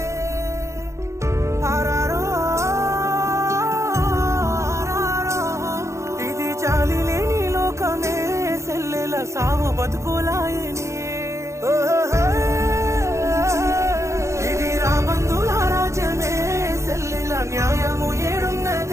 ఆరారో ఆరారో ఇది జాలి లేని లోకమే సెల్లెల సావు బతుకులాయని ఇది రాబందుల రాజ్యమే సెల్లెల న్యాయము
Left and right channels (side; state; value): left; late; 0.14 ms